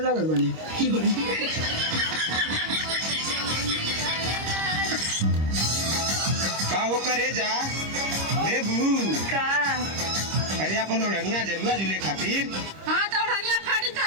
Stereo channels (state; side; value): late; left; 26 ms